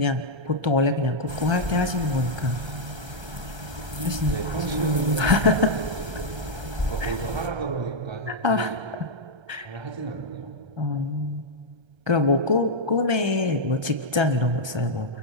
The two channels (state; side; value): late; left; 1.3 ms